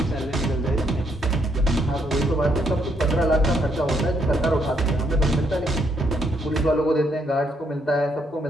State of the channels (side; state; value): both; normal; correlation 0.74